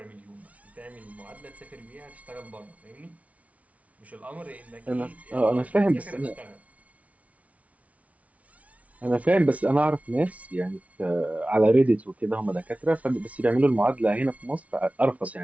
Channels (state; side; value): late; left; 0.067 ms